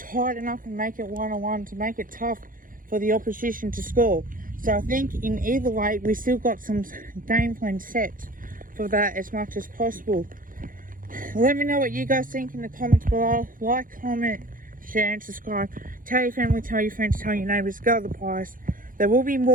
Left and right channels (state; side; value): late; left; 0.40 ms